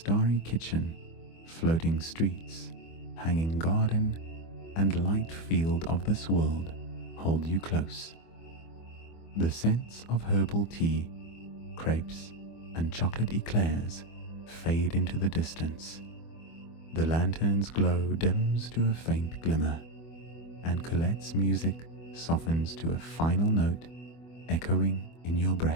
kitchen, floating streets, hanging garden, and light field of this world hold you close. The scents of herbal tea, crepes, and chocolate eclairs fade into the distance. The lantern's glow dims to a faint glimmer, and Colette's music softens to a final note echoing in your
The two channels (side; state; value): right; late; 24 ms